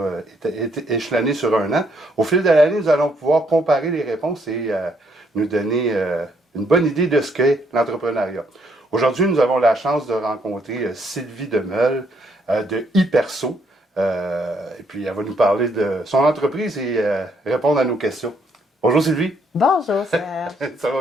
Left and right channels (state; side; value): normal; both; correlation 0.71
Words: échelonnés sur un an, au fil de l'année, nous allons pouvoir comparer les réponses et nous donner une bonne idée de ce qu'est l'entrepreneuriat. Aujourd'hui, nous avons la chance de rencontrer Sylvie Demeule de Hyperso. Et puis, elle va nous parler de son entreprise et répondre à nos questions. Bonjour Sylvie. Bonjour Serge. Ça